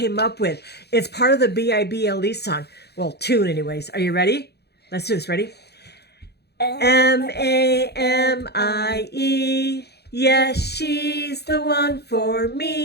up with. It's part of the BIBLE song. Well, tune anyways. Are you ready? Let's do this. Ready? Mamie. Yes, she's the one for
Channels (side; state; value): right; late; 0.48 ms